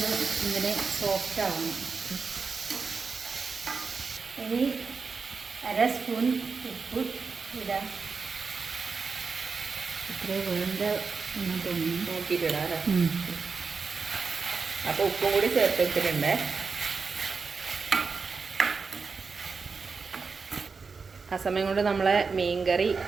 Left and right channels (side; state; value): left; quieter; 4.9 dB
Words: ഇങ്ങനെ സോഫ്റ്റ് ആവണം. ഇനി 1/2 സ്പൂൺ ഉപ്പ് ഇടാം. ഇത്ര വേണ്ട എന്ന് തോന്നുന്നു. നോക്കിയിട്ടിടാം അല്ലേ? അപ്പോൾ ഉപ്പും കൂടി ചേർത്ത് വെച്ചിട്ടുണ്ട്. ആ സമയം കൊണ്ട് നമ്മളെ മീൻകറി